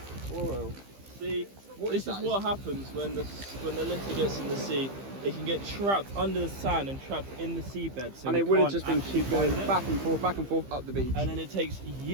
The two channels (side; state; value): left; late; 15 ms